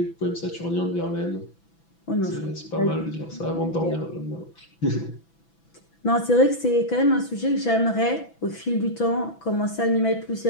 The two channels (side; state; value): right; late; 6.0 ms